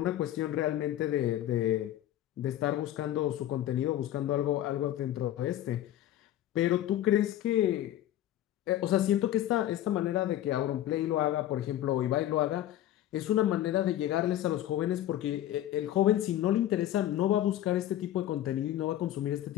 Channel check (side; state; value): right; quieter; 12.7 dB